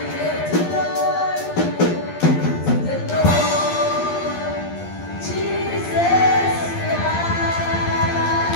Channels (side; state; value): right; late; 12 ms